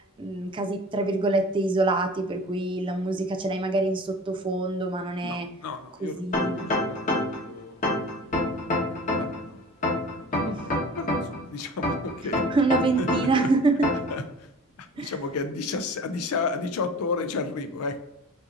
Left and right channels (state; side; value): normal; both; correlation 0.42